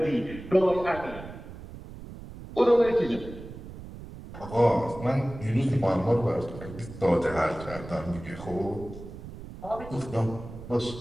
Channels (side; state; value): right; noise; rumble, 13 dB below the sound